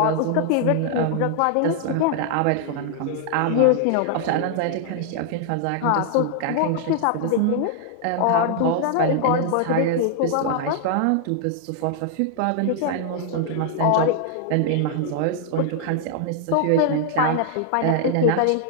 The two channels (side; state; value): both; different; correlation -0.01